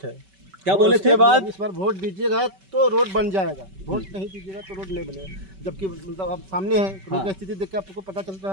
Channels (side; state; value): left; late; 5.2 ms